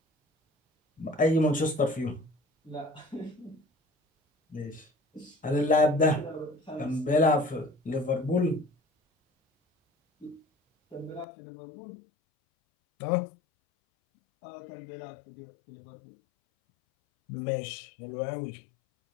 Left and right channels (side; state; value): right; drops out; at 11.2 s